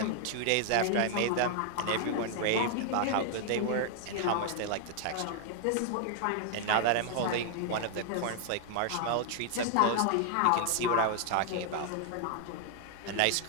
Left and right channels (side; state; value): both; different; correlation 0.00